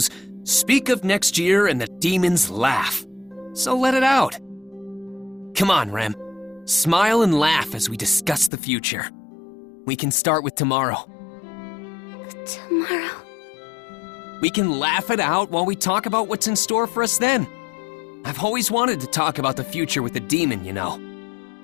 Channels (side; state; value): right; drops out; at 8.5 s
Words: "Speak of next year and the demons laugh." So let it out. Come on, Rem. Smile and laugh as we discuss the future. We can start with tomorrow. Tomorrow? We can laugh it out while we talk about what's in store for us then. I've always wanted to talk about the future with a demon, you know.